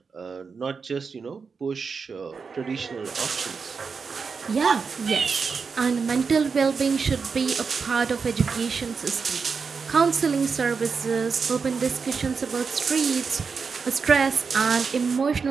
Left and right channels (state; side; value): quieter; left; 5.3 dB